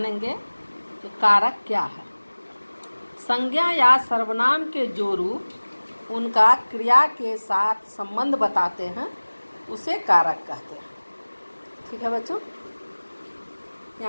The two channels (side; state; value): both; inverted; correlation -1.00